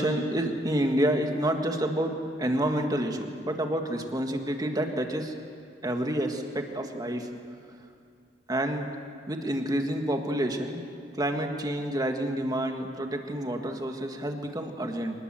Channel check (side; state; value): both; normal; correlation 0.69